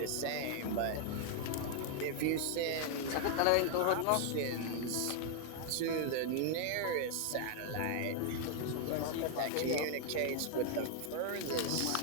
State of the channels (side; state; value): both; different; correlation 0.00